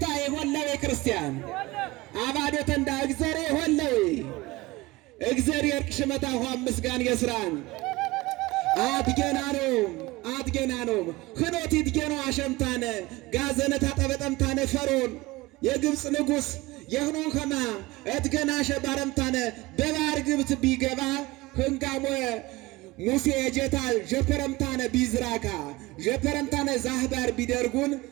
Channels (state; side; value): quieter; left; 21.0 dB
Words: ይሆለ ክርስቲያን አባዶተ እንዳ እግዘሬ ይሆለ እግዚአብሔር ቅሽመታ ሆም ምስጋን የስራን አትገና ነው ክኖት ይትገኖ አሸምታነ ጋዘነታ ጠበጠምታነ ፈርዖን የግብፅ ንጉሥ የህኖ ከማ እትገናሸ ባረምታነ በባህር ግብት ቢገባ ህንጋሞ ሙሴ የጀታል ጀፐረምታነ ቢዝራካ ጀፐረምታነ ዛህባር ቢደርጉን